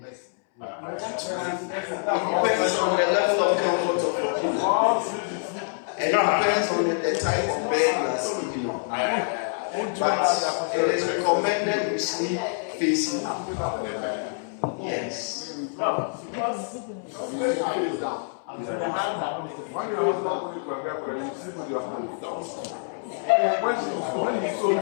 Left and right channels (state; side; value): silent; right; 61 dB below the other